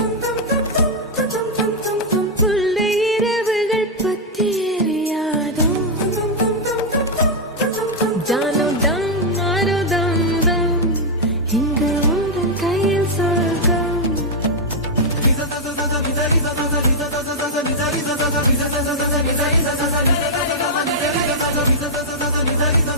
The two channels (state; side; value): normal; both; correlation -0.04